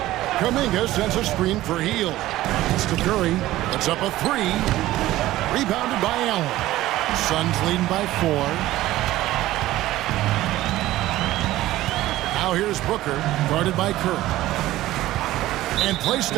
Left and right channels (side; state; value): left; quieter; 15.8 dB